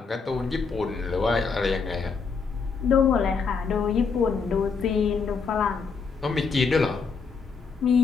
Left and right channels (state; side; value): quieter; right; 5.2 dB